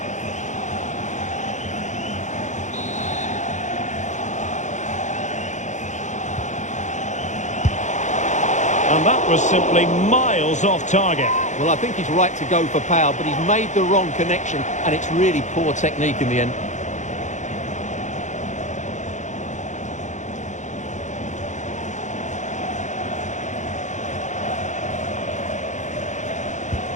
And that was simply miles off target. Well, I think he's right to go for power, but he's made the wrong connection, and it's really poor technique in the end.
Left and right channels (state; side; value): late; right; 0.35 ms